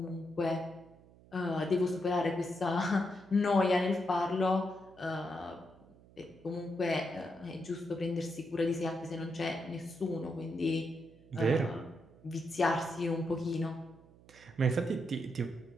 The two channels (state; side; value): noise; right; hum, 24 dB below the sound